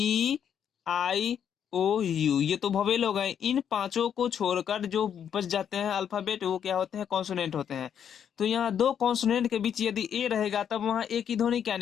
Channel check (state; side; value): quieter; right; 8.6 dB